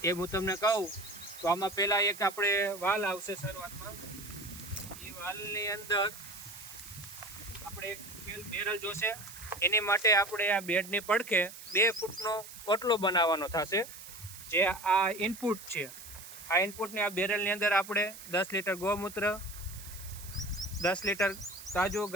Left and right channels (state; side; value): noise; right; hiss, 14 dB below the sound